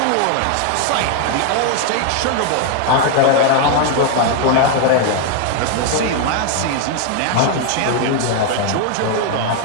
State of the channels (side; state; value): both; different; correlation 0.00